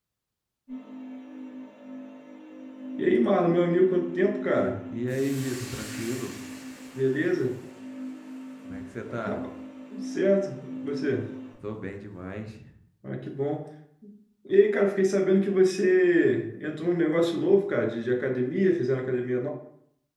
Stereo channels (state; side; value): identical; both; correlation 1.00